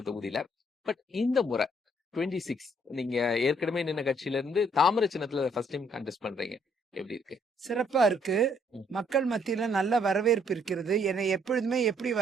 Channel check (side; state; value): both; normal; correlation 0.67